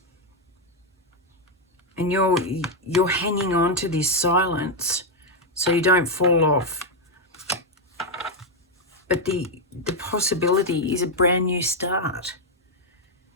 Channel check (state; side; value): normal; both; correlation 0.02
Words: and you're hanging on to this silence so you don't fall off. But the possibility is a brand new start.